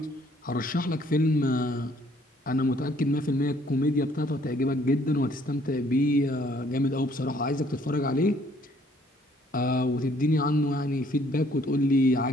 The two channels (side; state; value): both; normal; correlation 0.63